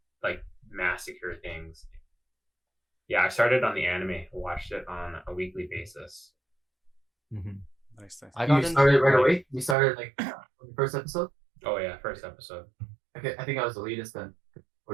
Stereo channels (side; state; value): left; drops out; at 9.8 s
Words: like massacre things. Yeah, I started on the anime, watched it on a weekly basis. Mm-hmm. Nice. I got You into started right like, away. You started like on the first episode. Oh yeah, first episode. Okay, I think I was the latest then.